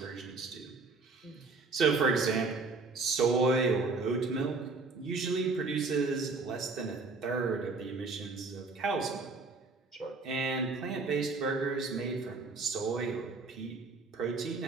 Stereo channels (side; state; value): left; quieter; 3.9 dB